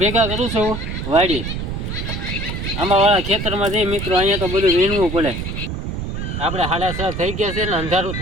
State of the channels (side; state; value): right; noise; rumble, 4 dB below the sound